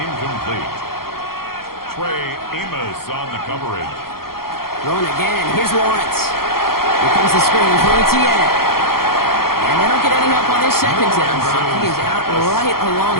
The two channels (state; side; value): late; right; 0.93 ms